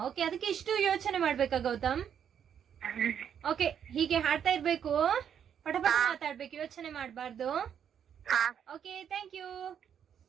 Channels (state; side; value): quieter; left; 8.5 dB